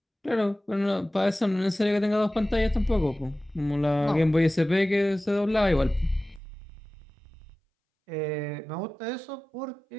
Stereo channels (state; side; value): drops out; left; at 6.4 s